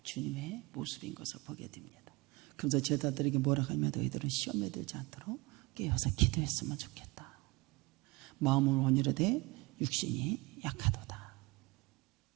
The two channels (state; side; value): quieter; left; 24.6 dB